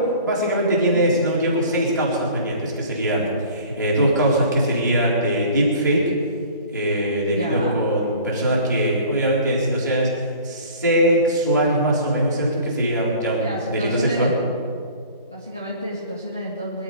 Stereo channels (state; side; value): inverted; both; correlation -0.47